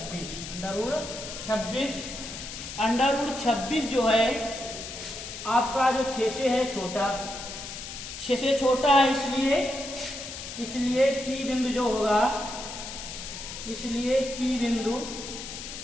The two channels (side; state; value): left; noise; hiss, 9 dB below the sound